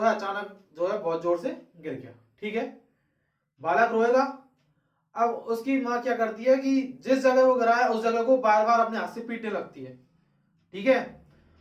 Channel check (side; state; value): both; identical; correlation 1.00